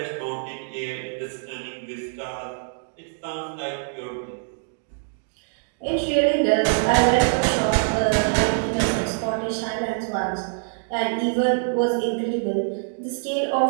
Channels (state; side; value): silent; left; digital silence